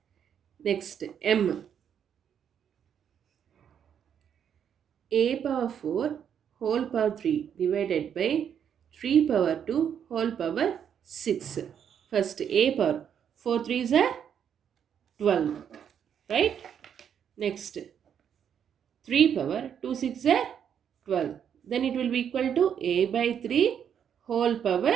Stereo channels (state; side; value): quieter; left; 8.4 dB